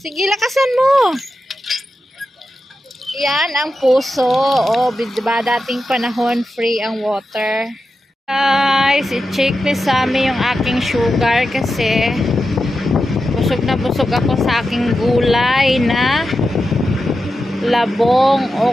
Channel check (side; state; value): both; normal; correlation 0.90